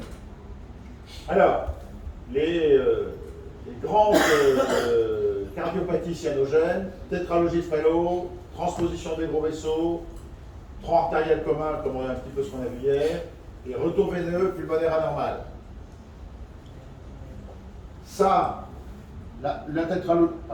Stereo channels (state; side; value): identical; both; correlation 1.00